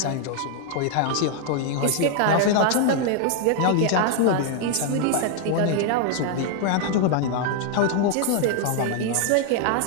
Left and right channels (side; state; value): both; different; correlation 0.00